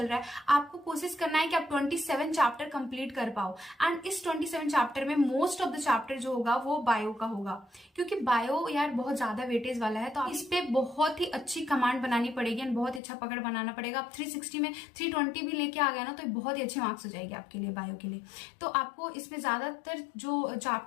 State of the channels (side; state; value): right; drops out; at 13.0 s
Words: रहा है, आपको कोशिश करना है कि आप 27 चैप्टर कंप्लीट कर पाओ एंड इस 27 चैप्टर में मोस्ट ऑफ द चैप्टर जो होगा वो बायो का होगा, क्योंकि बायो यार बहुत ज्यादा वेटेज वाला है, तो इस पे बहुत ही अच्छी कमांड बनानी पड़ेगी एंड बहुत ही अच्छा पकड़ बनाना पड़ेगा। आप 360 में 320 भी लेके आ गया ना तो बहुत ही अच्छे मार्क्स हो जाएंगे आपके लिए बायो के लिए। तो आपको इसमें ज्यादातर जो